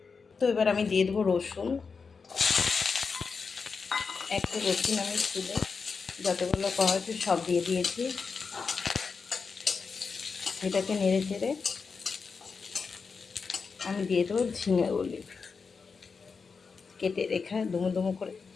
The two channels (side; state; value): right; quieter; 5.1 dB